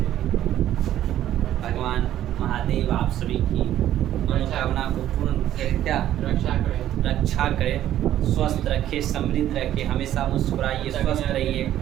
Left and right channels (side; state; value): left; quieter; 12.2 dB